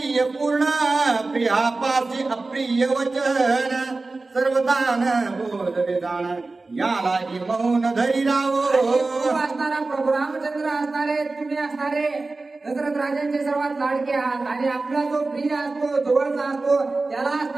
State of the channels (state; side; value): quieter; left; 3.5 dB